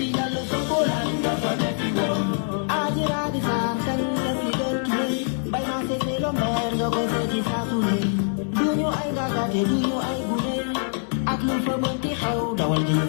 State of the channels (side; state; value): right; silent; 62 dB below the other